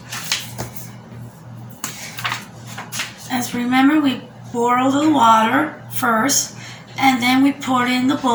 As remember, we boil the water first, and then we pour it in the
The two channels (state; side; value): identical; both; correlation 1.00